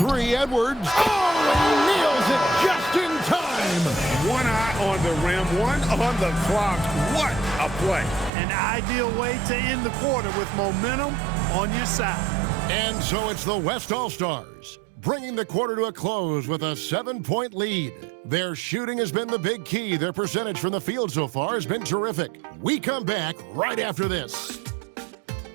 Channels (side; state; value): left; drops out; at 8.3 s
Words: Edwards. Oh, and he nails it just in time. One eye on the rim, one on the clock. What a play. An ideal way to end the quarter with momentum on your side. And so it's the West All-Stars, bringing the quarter to a close with a 7-point lead. Their shooting has been the big key. Their percentage from the field so far has been terrific. We come back right after this.